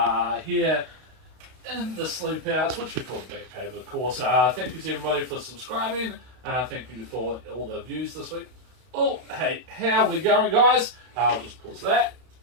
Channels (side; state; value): left; late; 32 ms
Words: here in the sleep outs, which we call the Batcave, of course. Thank you to everybody for subscribing. Thank you for all the views this week. Oh, hey, how are we going, guys? I'll just pause that.